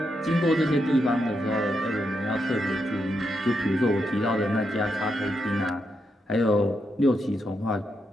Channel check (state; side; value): normal; both; correlation 0.82